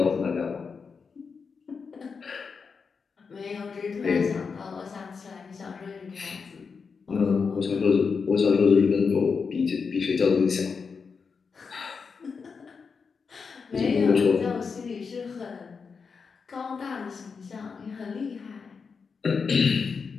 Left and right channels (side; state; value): right; quieter; 5.4 dB